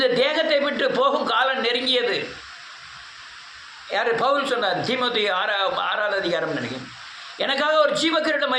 தேகத்தை விட்டு போகும் காலம் நெருங்கியது. யார்? பவுல் சொன்னார். தீமோத்தி 6வது அதிகாரம் நினைக்கிறேன். எனக்காக ஒரு ஜீவக்கிரீடம்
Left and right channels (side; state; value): both; identical; correlation 1.00